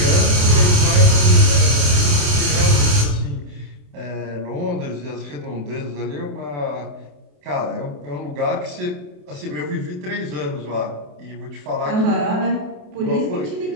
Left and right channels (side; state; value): left; late; 28 ms